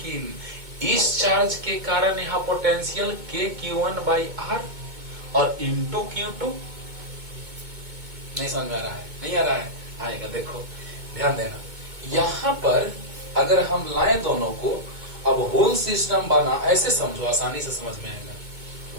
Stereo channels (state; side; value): late; left; 2.2 ms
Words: इस चार्ज के कारण यहां potential K Q1 by R और इंटू Q2। नहीं समझ में आ रहा है? नहीं आ रहा है? आएगा, देखो ध्यान देना। यहां पर अगर हम लाएं दोनों को, अब होल सिस्टम बना, ऐसे समझो आसानी से समझ में आएगा।